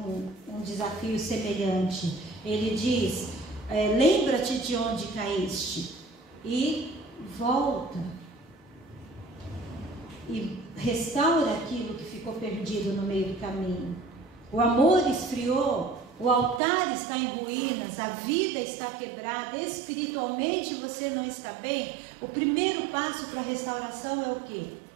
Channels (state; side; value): drops out; left; at 16.6 s